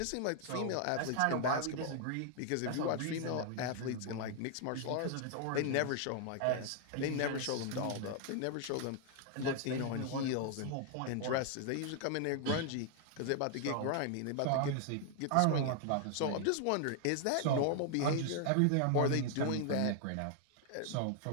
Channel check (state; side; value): different; both; correlation 0.00